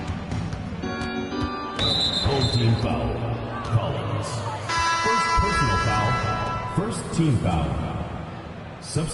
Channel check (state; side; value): identical; both; correlation 1.00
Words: Home team foul. Collins. First personal foul. First team foul.